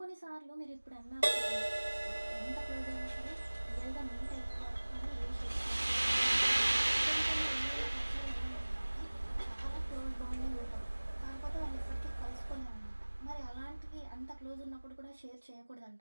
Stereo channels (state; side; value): inverted; both; correlation -1.00